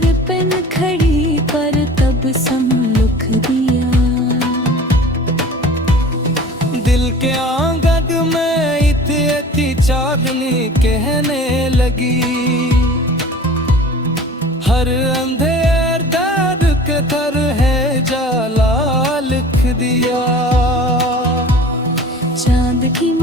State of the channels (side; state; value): both; normal; correlation 0.43